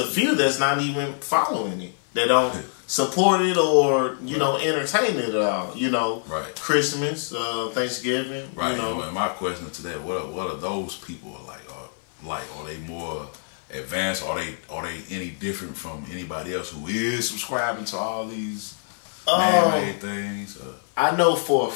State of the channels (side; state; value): right; silent; 56 dB below the other